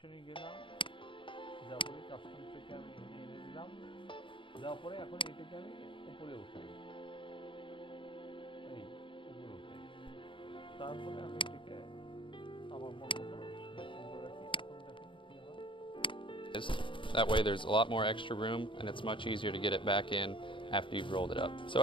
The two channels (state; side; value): late; right; 0.25 ms